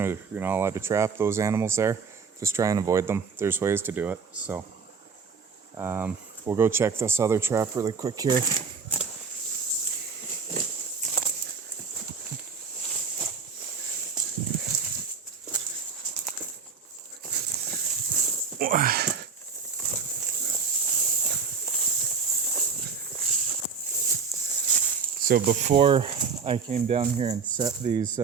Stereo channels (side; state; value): left; quieter; 5.4 dB